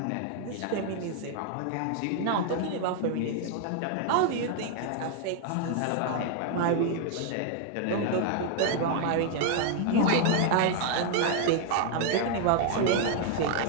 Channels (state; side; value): different; both; correlation 0.00